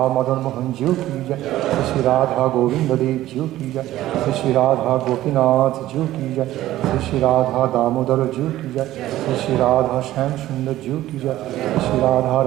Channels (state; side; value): quieter; left; 14.7 dB